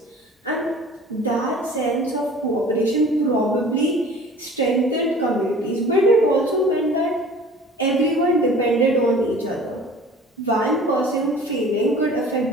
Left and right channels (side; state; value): both; normal; correlation 0.46